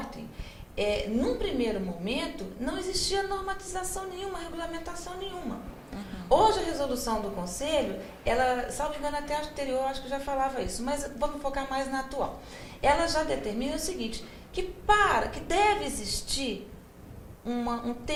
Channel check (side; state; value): both; identical; correlation 1.00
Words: num primeiro momento, não existia normatização nenhuma, regulamentação nenhuma. Hoje, a resolução do Conselho, ela, salvo engano, até a anterior, acho que já falava isso, mas vamos focar mais na atual. Ela já determina o seguinte, que deve existir um